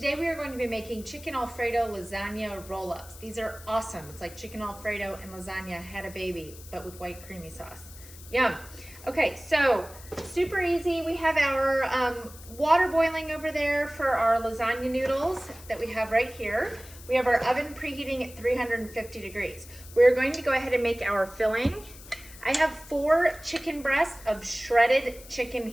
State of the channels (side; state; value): left; noise; hiss, 18 dB below the sound